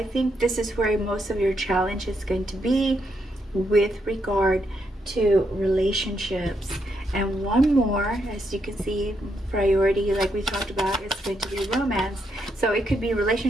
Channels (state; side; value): normal; both; correlation 0.79